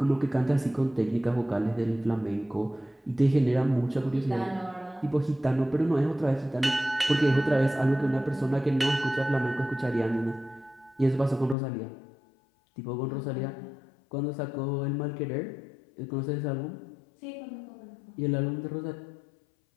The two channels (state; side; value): drops out; right; at 11.6 s